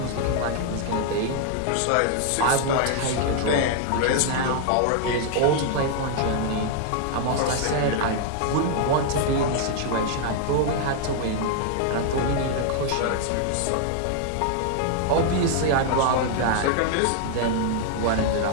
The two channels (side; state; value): both; different; correlation 0.00